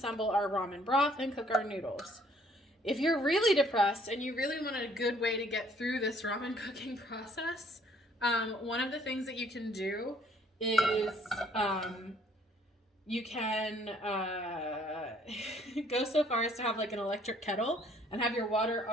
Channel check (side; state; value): both; normal; correlation 0.62